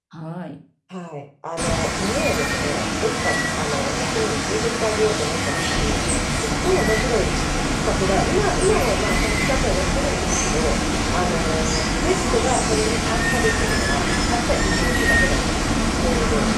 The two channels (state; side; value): identical; both; correlation 1.00